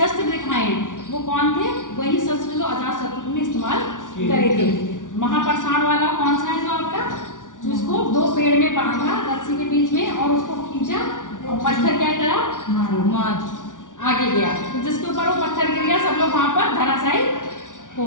दिखाए हैं वो कौन थे? वही शस्त्र जो अजातशत्रु ने इस्तेमाल करे थे। महाप्रसाद वाला कौन सा है जो आपका? जिसको दो पेड़ में बांधा रस्सी के बीच में और उसको खींचा और पत्थर क्या करा? आगे गया। तो जिसके ऊपर वो पत्थर गिर गया, सब लोग वहां पर धराशायी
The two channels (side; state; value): right; late; 0.87 ms